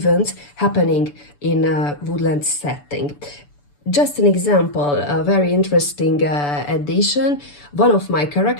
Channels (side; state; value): right; late; 6.9 ms